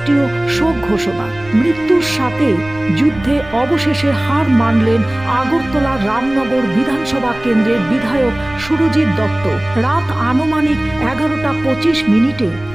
শোক ঘোষণা। মৃত্যুর সাথে যুদ্ধে অবশেষে হার মানলেন আগরতলা রামনগর বিধানসভা কেন্দ্রের বিধায়ক সুরজিৎ দত্ত। রাত আনুমানিক 11:25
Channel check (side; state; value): right; noise; rumble, 18 dB below the sound